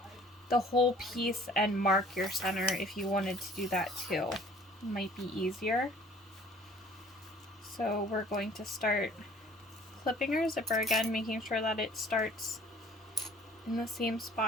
the whole piece and mark your center if you wanted to do that too. It might be easier. So we're going to start clipping our zipper again, making sure that it starts in the same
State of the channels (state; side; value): normal; both; correlation 0.53